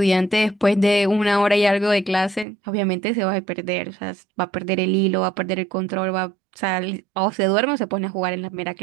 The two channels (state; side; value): drops out; left; at 2.5 s